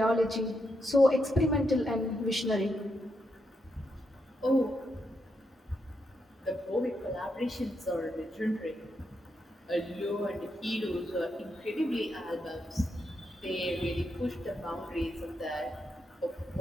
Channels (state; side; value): normal; both; correlation 0.82